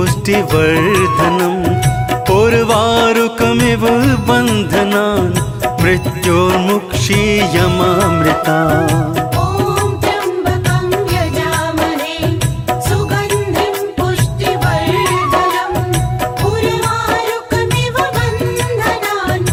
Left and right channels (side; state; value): both; identical; correlation 1.00